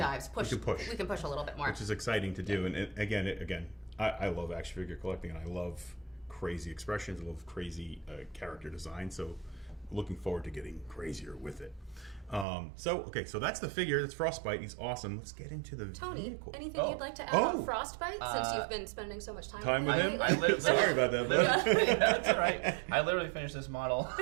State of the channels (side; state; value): left; drops out; at 12.5 s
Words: We can push a little bit more. Which is exciting to do. Yeah. And again, I love action figure collecting and I love crazy expressions. I love crazy character design. So looking forward to getting crazier with it. So that's the figure. That's Frostbite. He's awesome. Let's get into the vehicle. Anything you'd like to add about Frostbite since you've been spending so much time with him? Sorry about that. That's all right. I literally finished this model